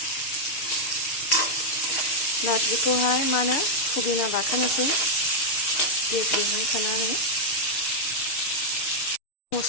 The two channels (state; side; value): late; right; 6.6 ms